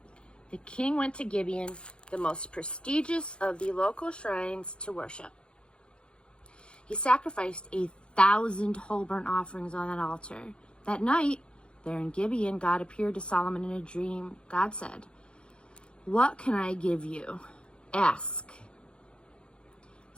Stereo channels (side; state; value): right; late; 0.055 ms